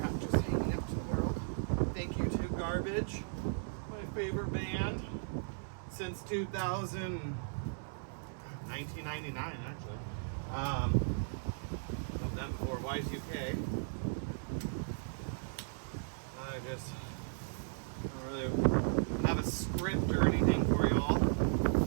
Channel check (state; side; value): silent; left; 54 dB below the other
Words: just hanging out to the world. Thank you to Garbage, my favorite band since 1999 actually. Of them before Y2K. I just don't really have a script or anything for y'all.